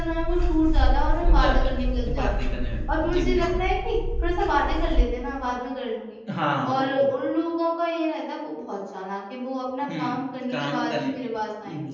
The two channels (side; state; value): both; identical; correlation 1.00